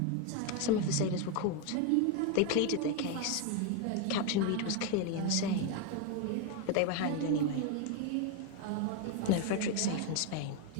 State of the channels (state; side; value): different; both; correlation 0.01